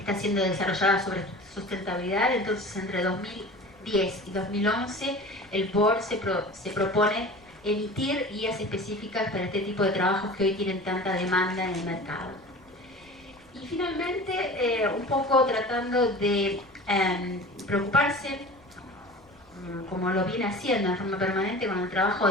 siendo desarrollada sobre sustentabilidad. Entonces entre 2010 y 2011 el board se propone emitir guías específicas para este tipo de trabajos que hoy tienen tanta demanda en el mercado. Y finalmente, un poco tratando de preocuparse, como lo viene haciendo en forma permanente con el trabajo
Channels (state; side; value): noise; left; rumble, 29 dB below the sound